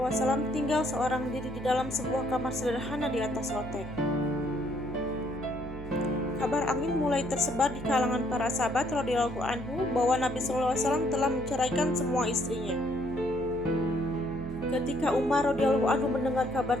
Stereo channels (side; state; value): right; noise; hum, 11 dB below the sound